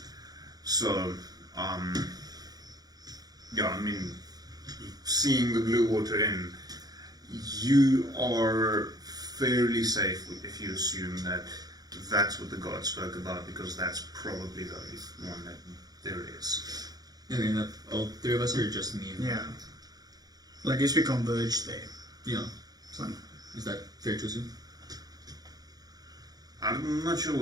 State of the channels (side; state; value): left; late; 0.19 ms